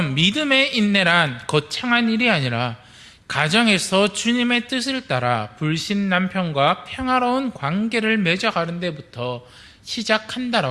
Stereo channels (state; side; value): identical; both; correlation 1.00